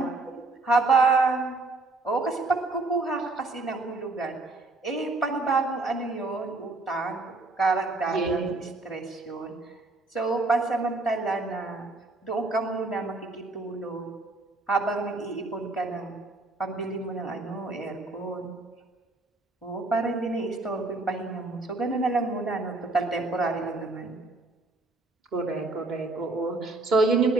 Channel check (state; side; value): quieter; left; 3.2 dB